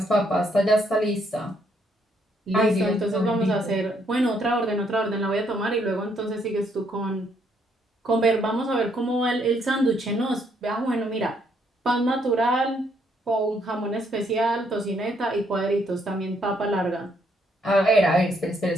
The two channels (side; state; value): both; normal; correlation 0.71